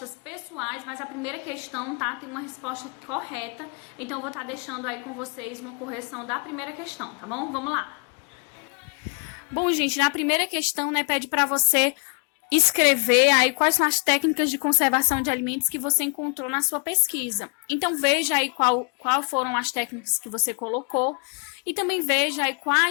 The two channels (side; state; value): right; quieter; 38.0 dB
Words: pessoais, mas a primeira questão, tá, tem uma resposta correta. Então eu vou estar deixando aí com vocês uma correção da primeira questão, tá bom? Vamos lá. Bom, gente, na primeira questão, né, pede para você escrever aí quais são as técnicas de conservação de alimentos que você encontrou na sua pesquisa. Então veja aí qual foram as técnicas que você colocou e também veja aí